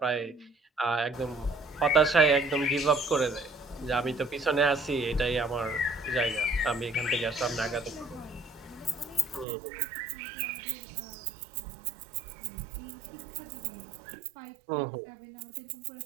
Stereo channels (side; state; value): left; drops out; at 9.5 s